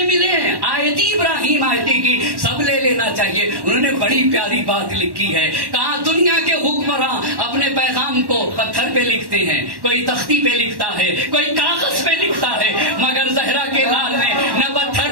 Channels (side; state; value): left; late; 1.1 ms